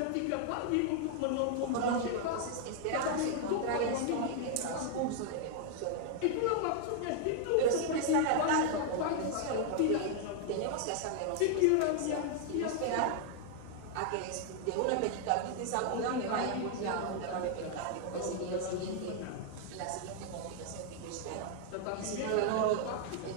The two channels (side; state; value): both; different; correlation 0.00